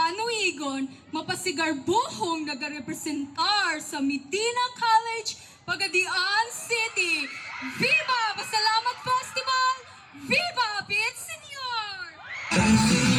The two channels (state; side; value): identical; both; correlation 1.00